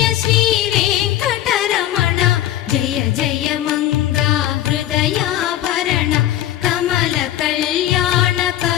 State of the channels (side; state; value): right; quieter; 13.1 dB